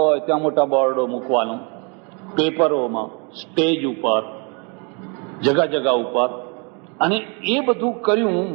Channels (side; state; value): left; quieter; 33.7 dB